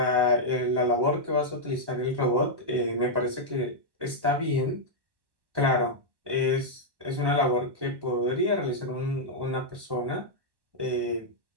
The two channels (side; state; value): left; late; 1.1 ms